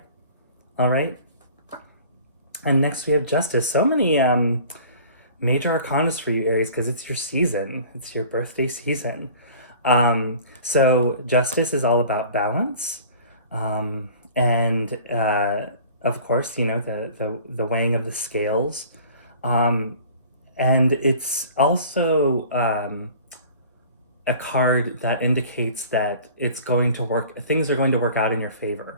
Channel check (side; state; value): both; inverted; correlation -0.46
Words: All right? And next we have Justice. So many major arcanas for you, Aries, because it's your season. It's your birthday season. So Justice is all about balance. And of course, the weighing of the scales. And it's also a card that indicates that it's going to work, things are going to work out in your